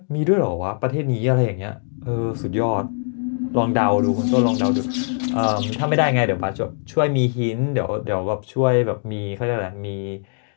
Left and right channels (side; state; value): right; silent; 61 dB below the other